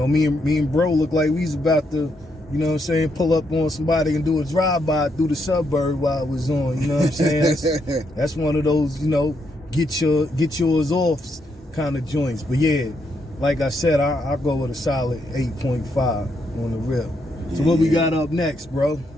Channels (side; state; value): both; normal; correlation 0.78